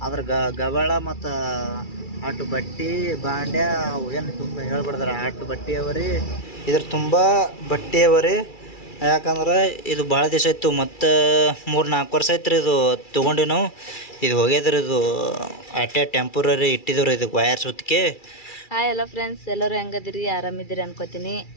ಅದ್ರ ಗಬಾಳ ಮತ್ತ ಅಟ್ಟು ಬಟ್ಟಿ ಬಾಂಡ್ಯ ಏನು ತುಂಬ ಹೇಳ್ಬಿಡ್ದಾರ. ಅಟ್ಟು ಬಟ್ಟಿ ಅವರಿ ಇದ್ರ ತುಂಬ ಬಟ್ಟೆ ಅವರಿ. ಯಾಕಂದ್ರೆ ಇದು ಭಾಳ ದಿವಸ ಇತ್ತು. ಮತ್ತು 3-4 ವರ್ಷ ಆಯ್ತು ರೀ ಇದು ತೊಗೊಂಡಿವಿ ನಾವು. ಇದು ಹೋಗ್ಯದ್ರಿ. ಇದು ಅಟ್ಟೆ ಟೆಂಪರರಿ ಇಟ್ಟಿದ್ರು ಇದಕ್ಕೆ ವಯರ್ ಸುತ್ತಿಗೆ. ಹಾಯ್ ಎಲ್ಲ ಫ್ರೆಂಡ್ಸ್, ಎಲ್ಲರೂ ಹೆಂಗದಿರಿ? ಆರಾಮಿದ್ದೀರಿ ಅನ್ಕೋತೀನಿ.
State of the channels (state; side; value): late; right; 2.3 ms